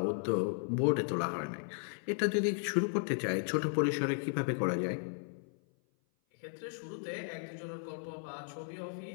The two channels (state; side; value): silent; right; 54 dB below the other